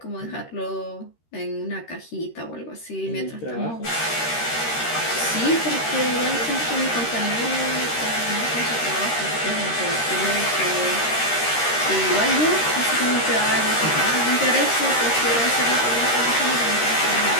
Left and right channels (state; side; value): late; right; 13 ms